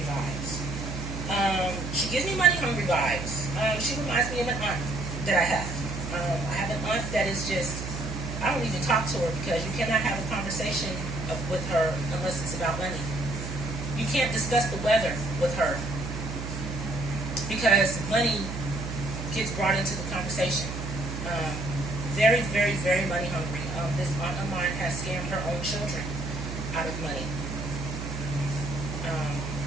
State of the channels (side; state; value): right; noise; hum, 6 dB below the sound